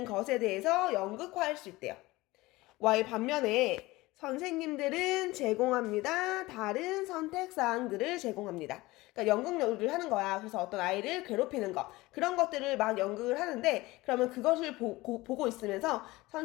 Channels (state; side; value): quieter; right; 20.2 dB